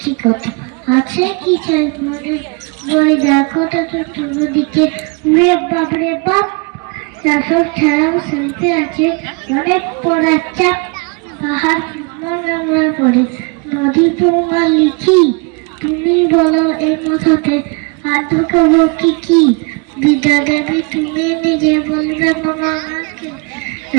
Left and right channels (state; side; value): quieter; left; 32.7 dB